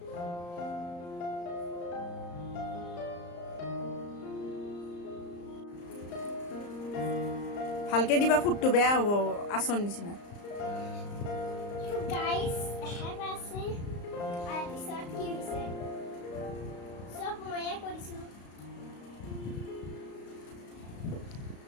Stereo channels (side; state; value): right; late; 34 ms